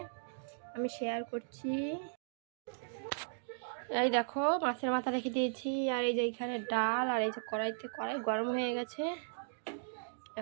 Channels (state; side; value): silent; left; digital silence